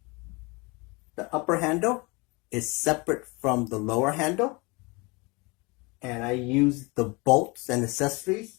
the upper handle is separate from the lower handle, and I use the bolts and accessories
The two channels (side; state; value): right; quieter; 27.1 dB